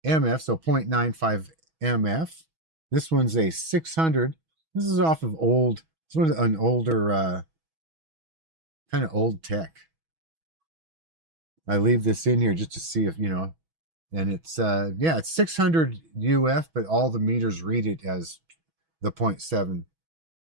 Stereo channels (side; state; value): left; late; 6.2 ms